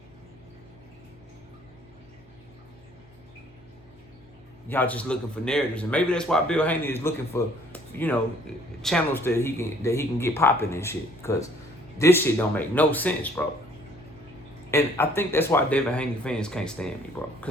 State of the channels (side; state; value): both; normal; correlation 0.60